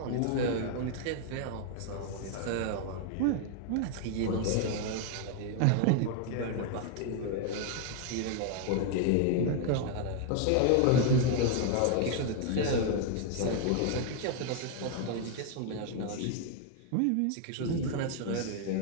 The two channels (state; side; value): different; both; correlation 0.00